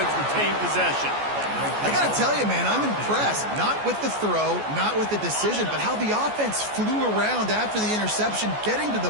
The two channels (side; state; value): left; late; 14 ms